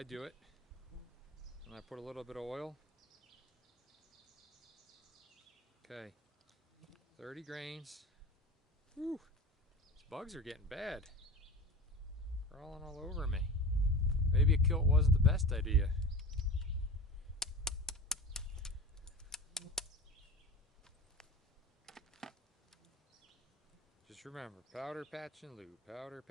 do it. And I put a little bit of oil. Okay, 30 grains. Whew, these bugs are getting bad. Crawling all over me. Maybe a kilt wasn't the best idea. Just remember, powder, patch, and lube. Powder,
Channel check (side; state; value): both; normal; correlation 0.32